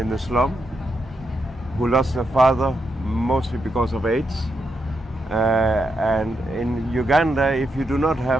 the slum, who lost their father mostly because of AIDS. And in Uganda, if you do not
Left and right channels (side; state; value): both; normal; correlation 0.83